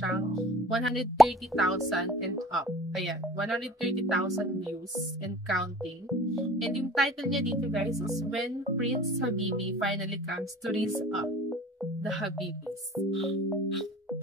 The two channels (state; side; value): normal; both; correlation 0.46